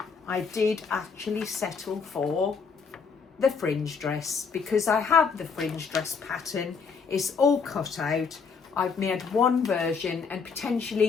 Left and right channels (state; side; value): quieter; right; 5.6 dB